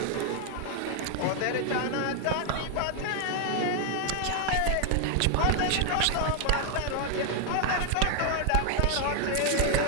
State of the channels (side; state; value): both; different; correlation 0.00